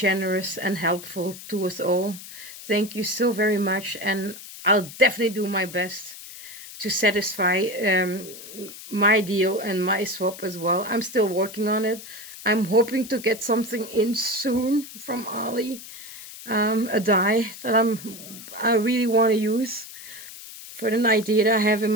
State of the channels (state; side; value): noise; left; hiss, 14 dB below the sound